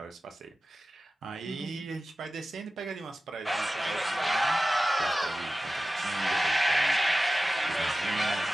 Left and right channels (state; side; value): normal; both; correlation 0.95